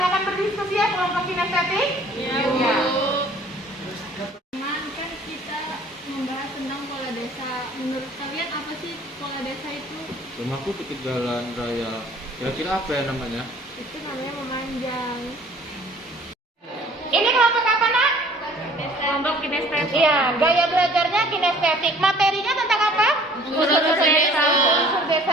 berdiskusi ya kelompok kinestetik. Iya. Teman, kan kita membahas tentang pola desa. Menurut kalian apa sih pola desa itu? Rumahku dekat jalan raya. Kira-kira apa ya namanya? Itu namanya memanjang. Ini kelompok apa, Nak? Kelompok kinestetik. Iya, gaya belajarnya kinestetik. Materinya tentang apa? Unsur desa. Unsur desa.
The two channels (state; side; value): normal; both; correlation 0.53